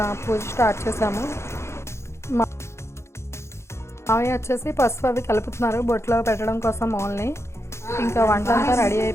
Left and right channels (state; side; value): late; right; 0.13 ms